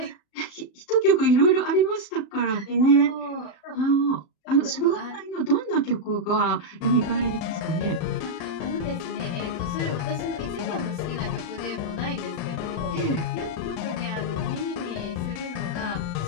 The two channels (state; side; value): late; right; 39 ms